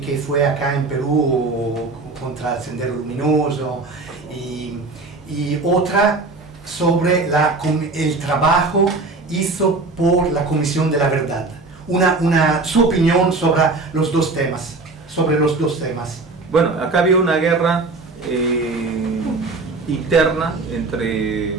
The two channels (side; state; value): left; quieter; 3.6 dB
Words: fue acá en Perú contra el Sendero Luminoso, y otra sobre el trabajo hizo por la Comisión de la Verdad. Su opinión sobre los dos temas. Bueno, acá había una guerra interna entre